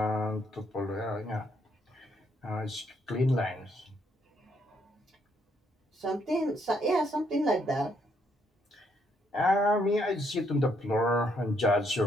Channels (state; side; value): normal; both; correlation 0.72